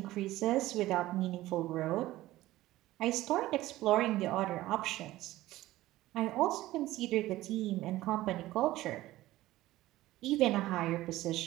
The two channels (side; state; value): left; quieter; 16.4 dB